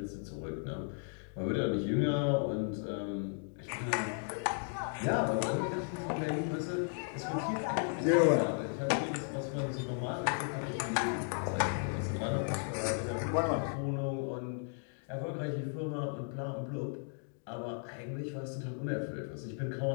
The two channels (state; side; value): silent; right; 54 dB below the other